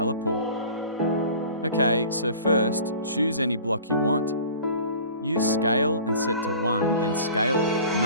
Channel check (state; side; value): inverted; both; correlation -0.44